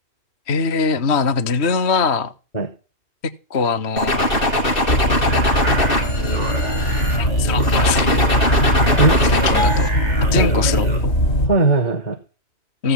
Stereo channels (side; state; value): right; late; 2.6 ms